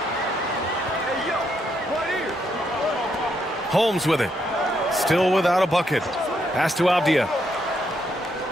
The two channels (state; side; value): normal; both; correlation 0.76